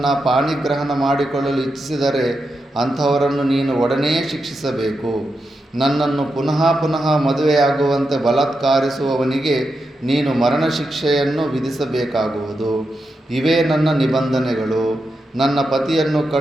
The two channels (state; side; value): normal; both; correlation 0.87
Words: ಪಾಣಿಗ್ರಹಣ ಮಾಡಿಕೊಳ್ಳಲು ಇಚ್ಛಿಸಿದರೆ ಅಂಥವರನ್ನು ನೀನು ಒಡನೆಯೇ ಶಿಕ್ಷಿಸಬೇಕು. ನನ್ನನ್ನು ಪುನಃ ಪುನಃ ಮದುವೆಯಾಗುವಂತೆ ಬಲಾತ್ಕಾರಿಸುವವನಿಗೆ ನೀನು ಮರಣ ಶಿಕ್ಷೆಯನ್ನು ವಿಧಿಸಬೇಕಾಗುವುದು. ಇವೇ ನನ್ನ ನಿಬಂಧನೆಗಳು. ನನ್ನ ಪತಿಯನ್ನು